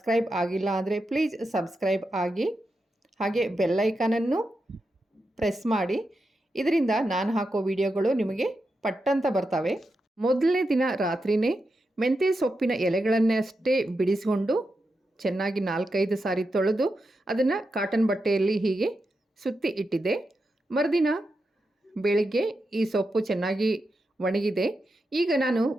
ಆಗಿಲ್ಲ ಅಂದರೆ ಪ್ಲೀಸ್ ಸಬ್ಸ್ಕ್ರೈಬ್ ಆಗಿ, ಹಾಗೆ ಬೆಲ್ಲೈಕಾನನ್ನು ಪ್ರೆಸ್ ಮಾಡಿ. ಇದರಿಂದ ನಾನು ಹಾಕೋ ವಿಡಿಯೋಗಳು ನಿಮಗೆ ಪಟ್ಟಂತ ಬರ್ತವೆ. ಮೊದಲನೇ ದಿನ ರಾತ್ರಿಯೇ ಮೆಂತ್ಯ ಸೊಪ್ಪಿನ ಎಲೆಗಳನ್ನಷ್ಟೇ ಬಿಡಿಸಿಕೊಂಡು ಚೆನ್ನಾಗಿ 4-5 ಸಾರಿ ತೊಳೆದು ಅದನ್ನು ಕಾಟನ್ ಬಟ್ಟೆಯಲ್ಲಿ ಹೀಗೆ ಸುತ್ತಿ ಇಟ್ಟಿದ್ದೆ. ಮರುದಿನ ಬೆಳಿಗ್ಗೆ ಈ ಸೊಪ್ಪು ಚೆನ್ನಾಗಿ ಒಣಗಿದೆ. ಈಗ ನಾನು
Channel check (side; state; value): both; normal; correlation 0.88